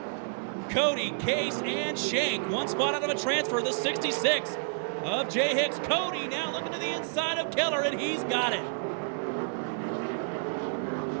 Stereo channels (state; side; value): silent; left; digital silence